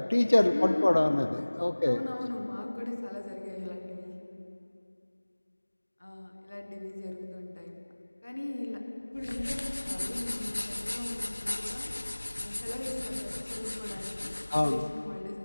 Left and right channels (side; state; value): both; inverted; correlation -1.00